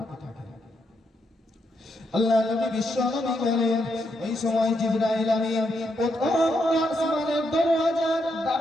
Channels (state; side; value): normal; both; correlation 0.80